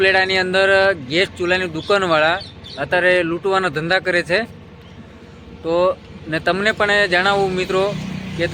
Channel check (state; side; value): identical; both; correlation 1.00